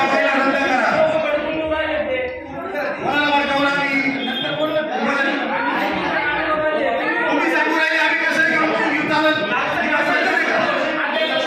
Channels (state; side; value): identical; both; correlation 1.00